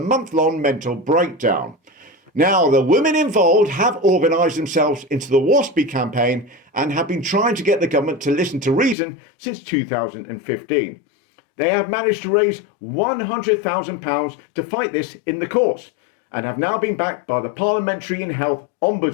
mental breakdown. Now, the women involved have organised themselves into the WASPy campaign and have been trying to get the government to listen to reason since 2015. They have managed to raise £100,000 to fight this in the courts, and have now been backed by the Parliamentary and Health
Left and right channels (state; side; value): drops out; right; at 9.0 s